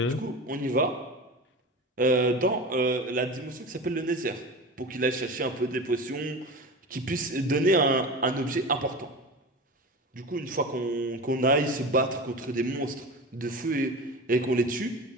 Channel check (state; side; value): normal; both; correlation 0.30